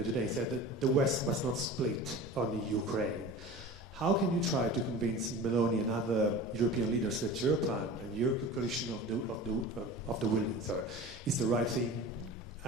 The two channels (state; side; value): normal; both; correlation 0.36